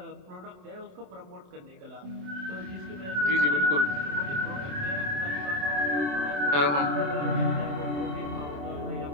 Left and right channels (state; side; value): late; left; 27 ms